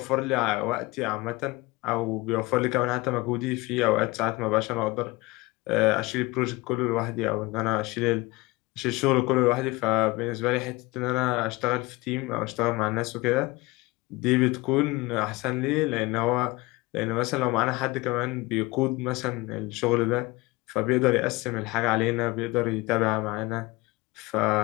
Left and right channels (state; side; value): quieter; right; 22.1 dB